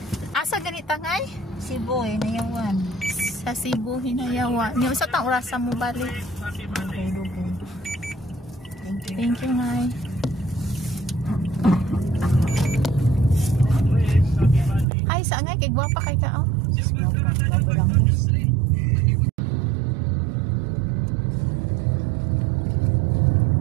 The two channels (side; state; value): left; drops out; at 14.9 s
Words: Asa ganita ngay? Cebu, Hinayawan. Sa Cebu, Hinayawan. Yung sa tang oras mo balik. Dugay-dugay. Thank you. Thank you, ngay. Ay, saan ngay? Kay gwapa kay ka, oh. Bago lang.